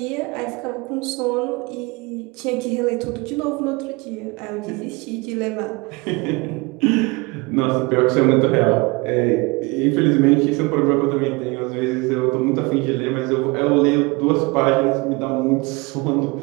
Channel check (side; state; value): left; quieter; 26.0 dB